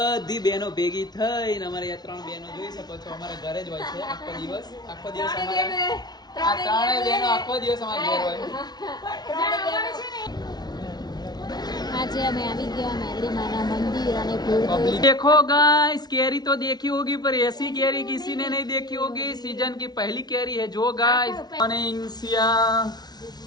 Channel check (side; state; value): right; late; 0.19 ms